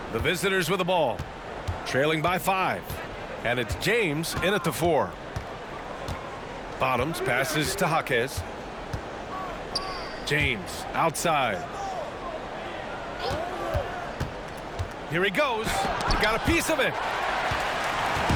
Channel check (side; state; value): both; identical; correlation 1.00